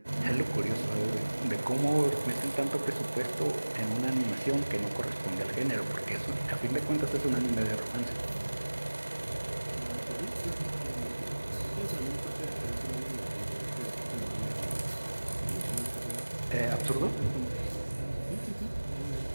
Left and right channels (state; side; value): inverted; both; correlation -1.00